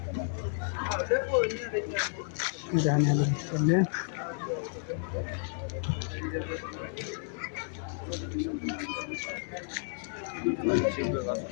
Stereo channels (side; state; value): right; silent; 57 dB below the other